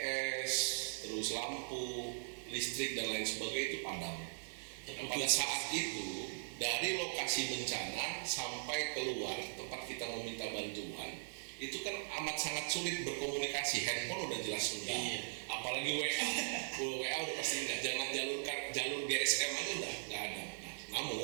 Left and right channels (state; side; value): silent; left; digital silence